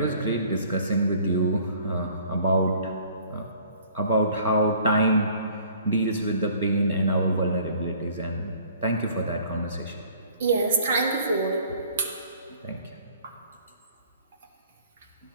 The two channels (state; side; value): inverted; both; correlation -0.54